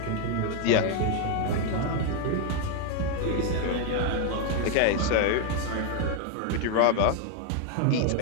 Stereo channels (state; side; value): different; both; correlation 0.01